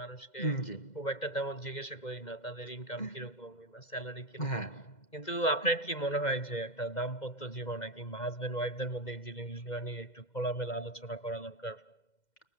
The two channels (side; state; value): right; late; 2.0 ms